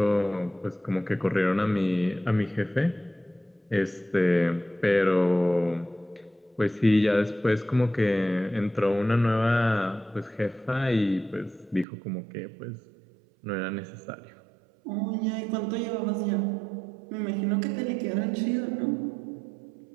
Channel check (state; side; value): drops out; left; at 11.9 s